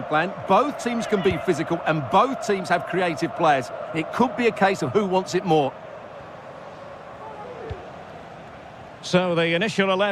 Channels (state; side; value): identical; both; correlation 1.00